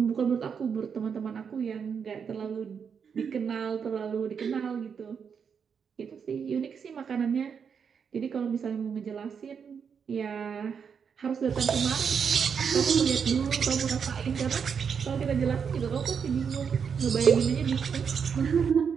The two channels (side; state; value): left; quieter; 6.7 dB